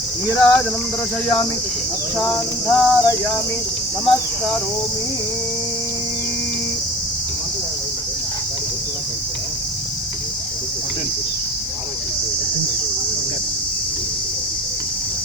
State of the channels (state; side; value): normal; both; correlation 0.39